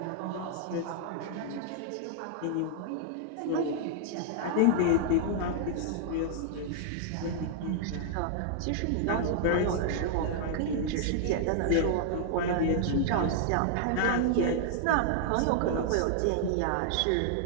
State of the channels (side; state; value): both; different; correlation -0.01